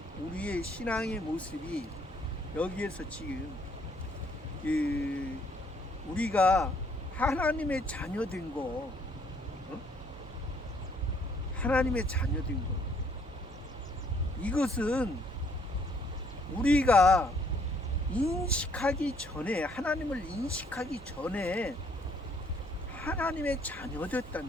우리의 신앙의 모습이 여기에서 지금 우리가 하나님의 자녀된 거, 하나님의 자녀된 거, 이것은 우리가 인식하기 전에, 하나님을 인식하기 전에 하나님의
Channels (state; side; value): normal; both; correlation 0.65